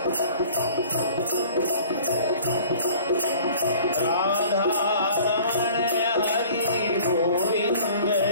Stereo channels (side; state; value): both; inverted; correlation -0.49